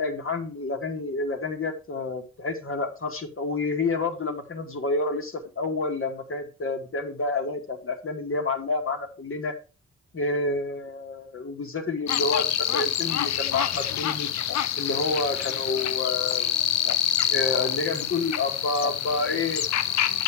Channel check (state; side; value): quieter; right; 5.3 dB